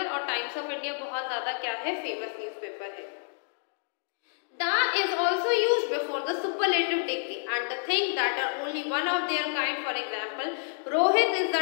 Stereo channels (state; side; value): silent; right; digital silence